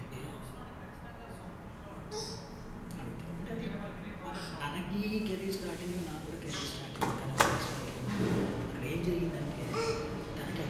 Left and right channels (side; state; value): both; identical; correlation 1.00